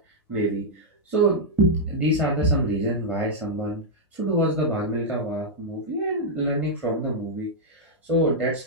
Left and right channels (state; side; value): normal; both; correlation -0.05